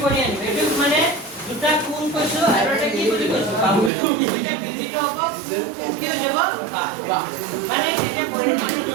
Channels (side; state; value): left; drops out; at 3.9 s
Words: কৰি আনিব এইটো মানে দুটা কোণ কৈছো আৰু এটা কি বুলি কৈছো বাহু এটা বিধিটো হ'ব কি হৈ যাব মানে এটা পৰিমাণ